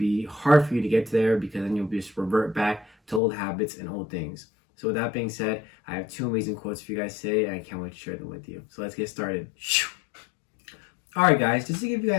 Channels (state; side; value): drops out; right; at 3.2 s